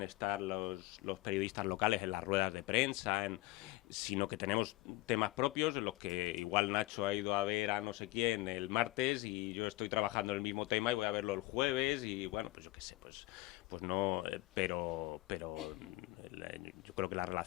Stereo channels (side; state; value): right; quieter; 20.0 dB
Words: estar los periodistas locales en las ruedas de prensa, sino que tenemos temas propios en los que igual Nacho ha ido a ver a no sé quién el martes y yo estoy trabajando en el mismo tema y voy a verlo el jueves y bueno, pues yo qué sé, pues no, pero yo creo que la